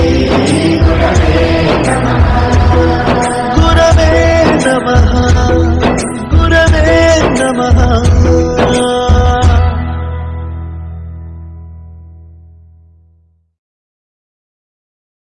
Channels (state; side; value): identical; both; correlation 1.00